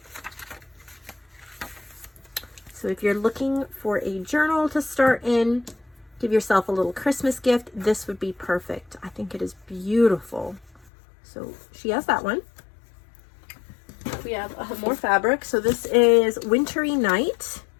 So if you're looking for a journal to start in, give yourself a little Christmas gift, this would be perfect. I think it is beautiful. So she has that one. We have more fabric. So this is Wintry Night,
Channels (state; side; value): drops out; right; at 10.9 s